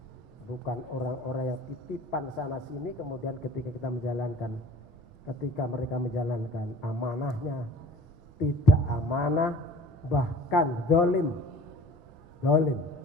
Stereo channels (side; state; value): both; normal; correlation 0.46